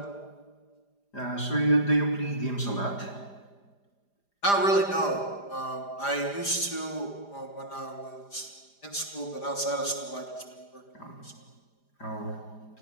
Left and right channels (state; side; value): late; right; 5.0 ms